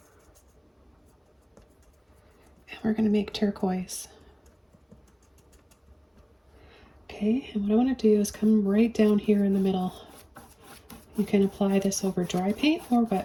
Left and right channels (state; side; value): identical; both; correlation 1.00